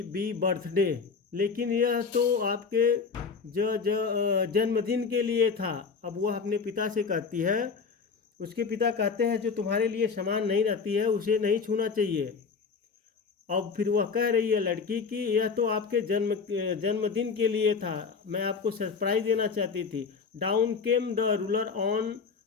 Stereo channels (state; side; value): quieter; right; 5.3 dB